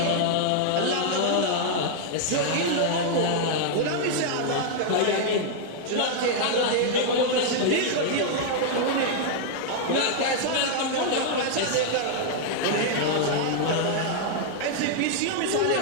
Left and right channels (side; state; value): both; different; correlation -0.01